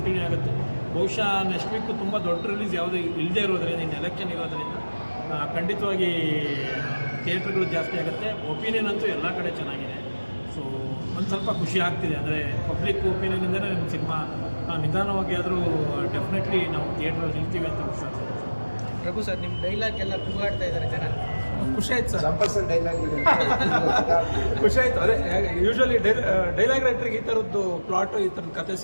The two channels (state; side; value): inverted; both; correlation -1.00